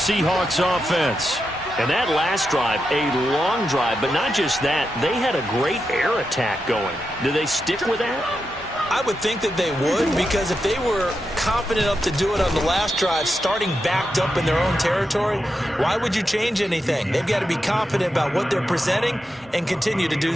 offense. And that last drive, a long drive, but not just that, they had a great air attack going. Do they stick with that? I would think that they would, because if they were confident enough to do it on the last drive, starting backed up in their own territory, why would you change anything? They've got to be confident about what they're presenting and continue to do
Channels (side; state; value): both; normal; correlation 0.87